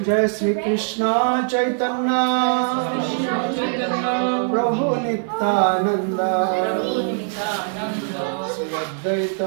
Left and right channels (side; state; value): left; silent; 56 dB below the other